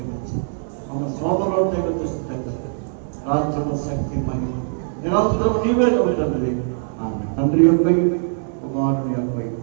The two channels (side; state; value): left; silent; 65 dB below the other